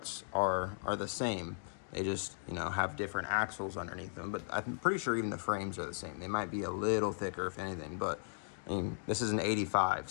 are the same. They just, you know, have different axles underneath them. But I'm pretty sure even the frames are the same. They might be a little thicker, if anything. But I mean, this is an 85,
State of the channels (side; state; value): right; silent; digital silence